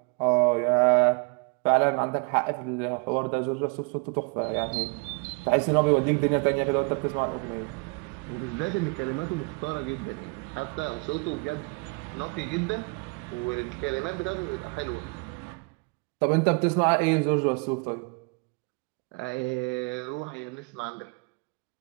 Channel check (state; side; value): quieter; left; 32.2 dB